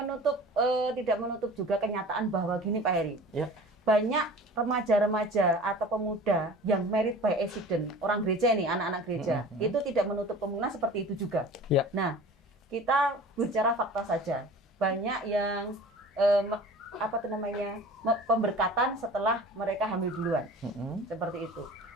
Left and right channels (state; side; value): normal; both; correlation 0.41